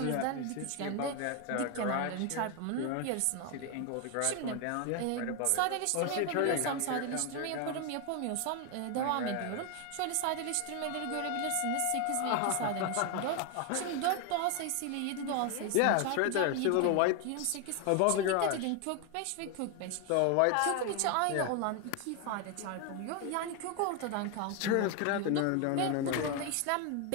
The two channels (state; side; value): different; both; correlation 0.01